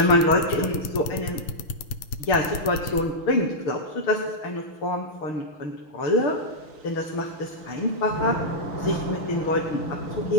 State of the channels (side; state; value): right; late; 6.9 ms